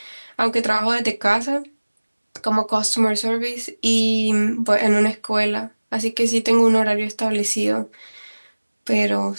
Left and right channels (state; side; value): inverted; both; correlation -1.00